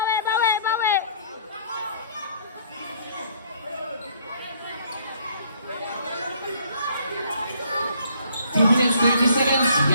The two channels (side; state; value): both; inverted; correlation -0.62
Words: bawi, bawi. 2 minutes, 30 seconds.